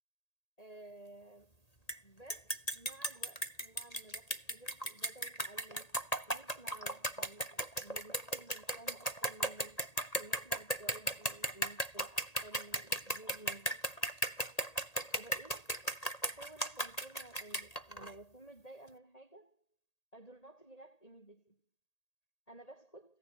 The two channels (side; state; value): right; late; 1.8 ms